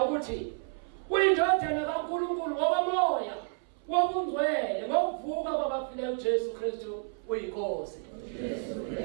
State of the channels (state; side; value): silent; left; 58 dB below the other